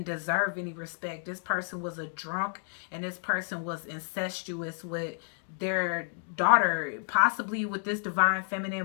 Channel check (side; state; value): right; silent; 56 dB below the other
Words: deserve any respect. This person was a drunk, and this person was incestuous with their daughter, possibly with this divine